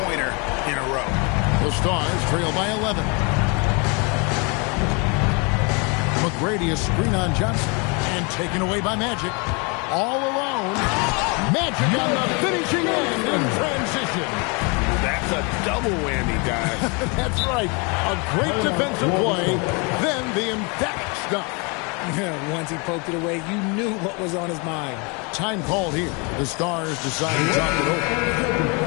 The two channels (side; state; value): right; quieter; 31.6 dB